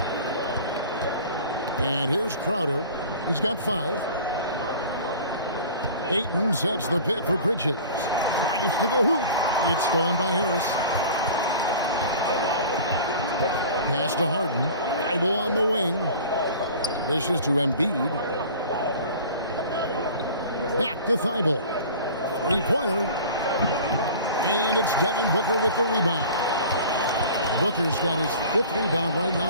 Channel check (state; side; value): inverted; both; correlation -0.41